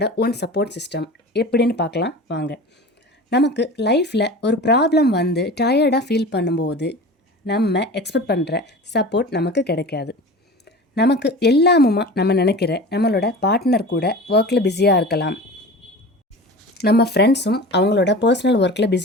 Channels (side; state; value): both; normal; correlation 0.35